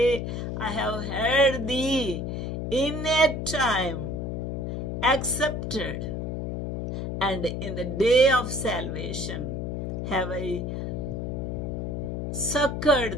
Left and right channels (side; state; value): left; noise; hum, 3 dB below the sound